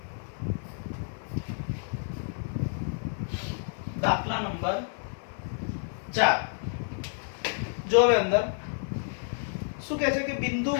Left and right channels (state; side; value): silent; right; digital silence